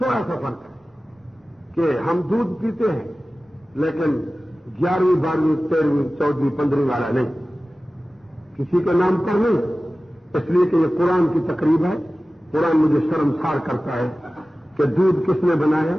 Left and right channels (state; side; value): normal; both; correlation 0.96